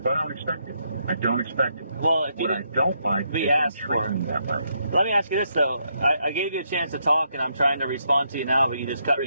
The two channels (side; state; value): both; inverted; correlation -0.77